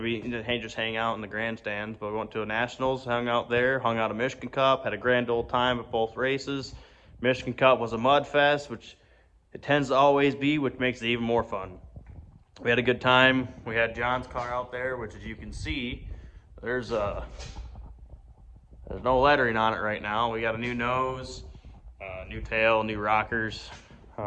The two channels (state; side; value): identical; both; correlation 1.00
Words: be just hang out in the grandstands, but we went to a nationals, hung out there, hung out a Michigan Cup, had a grand old time at both races. Michigan Cup was a mud fest, which it tends to always be, which makes it even more fun. We had a good time. We had John's car out there, which, as you can see, there's no lettering on it right now. We got a new nose, new tail, new rockers.